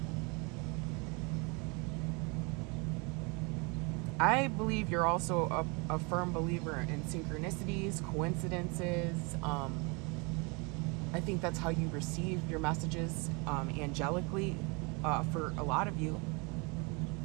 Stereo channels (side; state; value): left; quieter; 30.4 dB